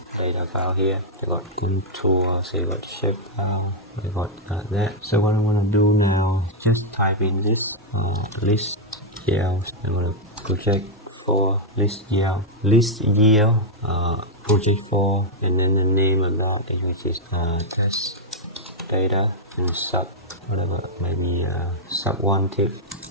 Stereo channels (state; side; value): normal; both; correlation -0.04